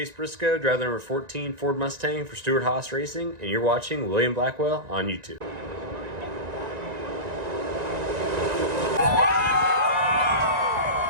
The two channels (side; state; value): left; late; 1.9 ms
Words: Briscoe, driver number 14 Ford Mustang for Stewart Haas Racing, and you're watching William Blackwell on YouTube.